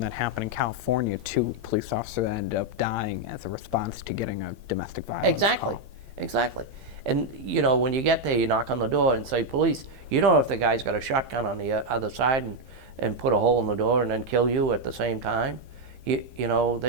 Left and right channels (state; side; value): late; left; 12 ms